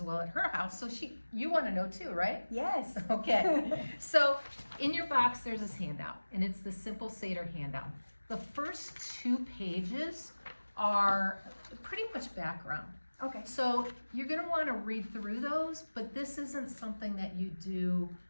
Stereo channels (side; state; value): both; inverted; correlation -1.00